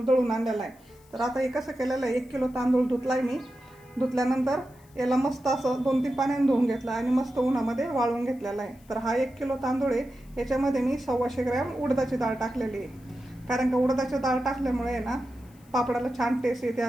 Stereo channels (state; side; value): noise; left; hiss, 29 dB below the sound